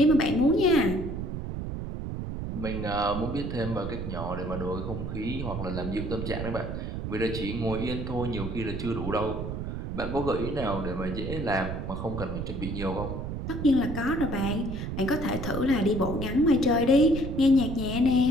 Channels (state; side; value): noise; right; rumble, 5 dB below the sound